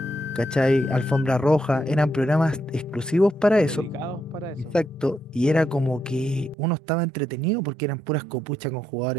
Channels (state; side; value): drops out; left; at 6.6 s